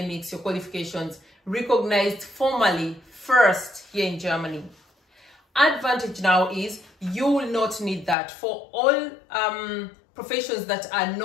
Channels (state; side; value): drops out; right; at 8.2 s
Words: your qualifications recognized formally first here in Germany. Advantage now is you will not need that for all professions that are